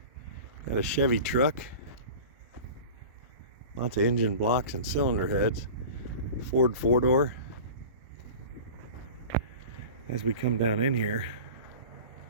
got a Chevy truck, lots of engine blocks and cylinder heads, Ford 4-door. As we come down in here,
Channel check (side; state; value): both; inverted; correlation -0.37